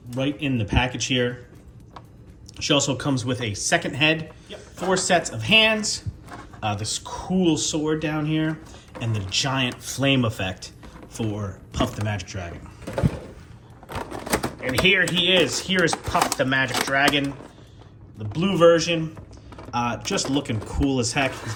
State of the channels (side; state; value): both; identical; correlation 1.00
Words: right in the package here. She also comes with a second head, 4 sets of hands, this cool sword down here, and the giant flame effect for Puff the Magic Dragon. And here he is. Here is Puff the Magic Dragon, the blue version. Just looking cool as heck. He's